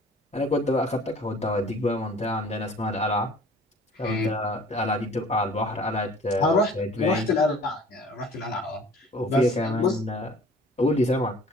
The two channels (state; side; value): normal; both; correlation 0.50